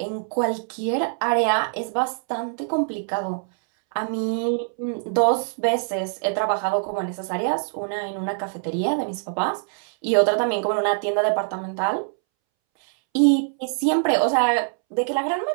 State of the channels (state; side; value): silent; left; 63 dB below the other